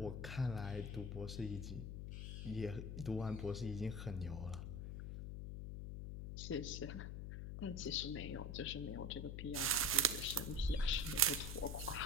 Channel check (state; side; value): noise; left; hum, 5 dB below the sound